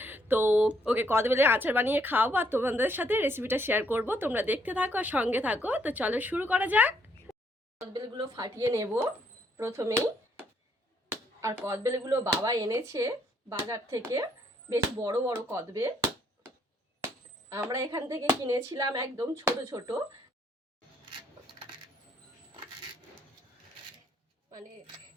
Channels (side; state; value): both; normal; correlation 0.70